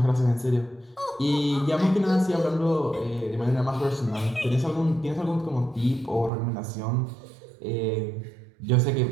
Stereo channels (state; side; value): drops out; left; at 6.3 s